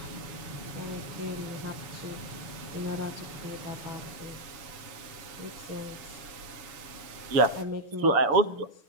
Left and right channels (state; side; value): late; left; 7.2 ms